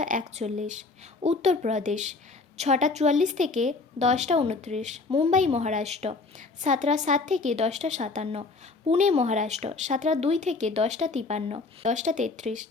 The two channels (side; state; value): right; quieter; 3.8 dB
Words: 41, উত্তরপ্রদেশ 6টা 44 থেকে 10টা 29, মুম্বাই মহারাষ্ট্র 7টা 7 থেকে 10টা 57, পুনে মহারাষ্ট্র 7টা 2 থেকে 10টা 53, 10টা 33,